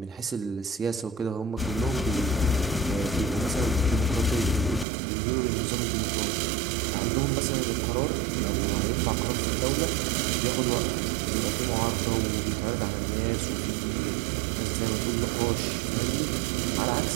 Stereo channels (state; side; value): drops out; left; at 4.9 s